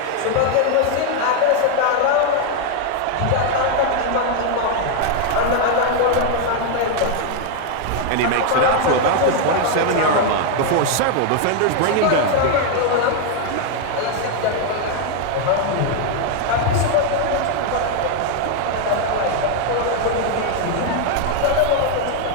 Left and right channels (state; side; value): different; both; correlation 0.01